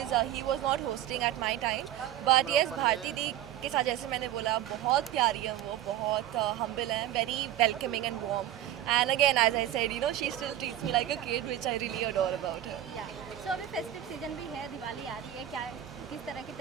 he was not hosting at my time. But yes, Bharti di के साथ जैसे मैंने बोला बहुत प्यारी है वो, बहुत हम्बल है, very welcoming and warm. And again as I said, you know, she still treats me like a kid which I really adore about her. Yeah so अभी फेस्टिव सीजन भी है, दिवाली आ रही है, क्या किस तरह की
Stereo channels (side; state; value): left; quieter; 12.3 dB